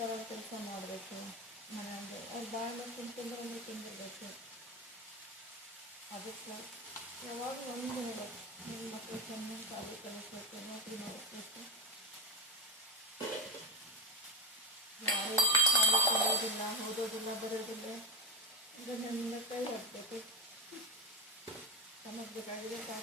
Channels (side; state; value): both; normal; correlation 0.12